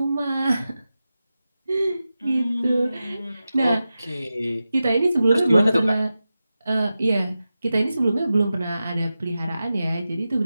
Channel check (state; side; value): inverted; both; correlation -0.93